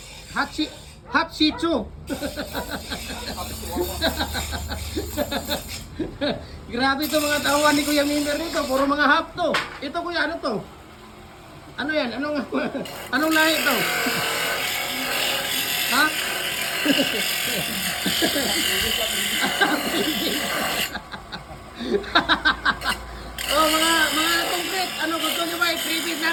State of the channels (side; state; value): both; identical; correlation 1.00